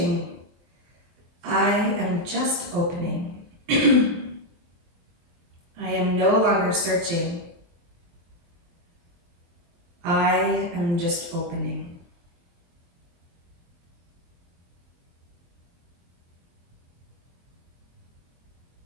I am just opening. I am no longer searching, I am just opening.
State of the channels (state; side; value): late; left; 23 ms